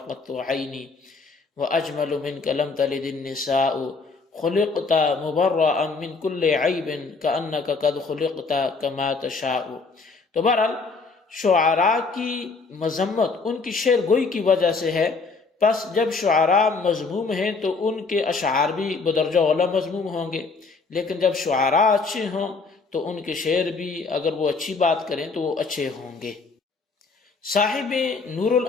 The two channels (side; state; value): right; quieter; 4.3 dB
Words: قَطُّ عَيْنِي وَأَجْمَلُ مِنْكَ لَمْ تَلِدِ النِّسَاءُ خُلِقْتَ مُبَرَّأً مِنْ كُلِّ عَيْبٍ كَأَنَّكَ قَدْ خُلِقْتَ كَمَا تَشَاءُ۔ تو بہرحال شعراء کی مذمت ان کی شعر گوئی کی وجہ سے ہے، پس جب شعراء مذموم ہیں تو ان کے اشعار بھی بدرجہ اولیٰ مذموم ہوں گے، لیکن جب شعراء اچھے ہوں تو ان کے شعر بھی اگر وہ اچھی بات کریں تو وہ اچھے ہوں گے۔ صاحب نور